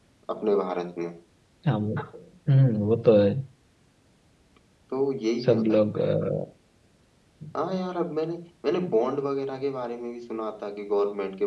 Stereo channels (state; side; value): identical; both; correlation 1.00